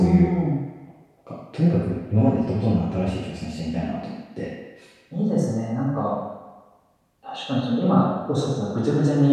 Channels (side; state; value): both; identical; correlation 1.00